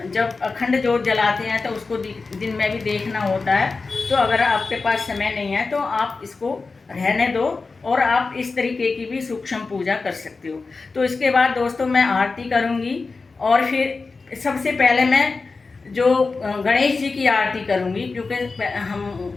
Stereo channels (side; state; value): right; quieter; 4.1 dB